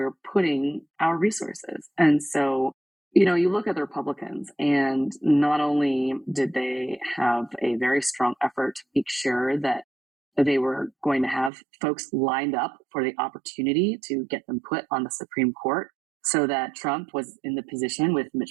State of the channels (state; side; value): drops out; left; at 11.5 s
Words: putting our resources. And so, you look at the Republicans, and not only did they have a very strong effort to make sure that they were going to have folks lined up for the opportunity to get them put on the Supreme Court, so that Trump was in the position with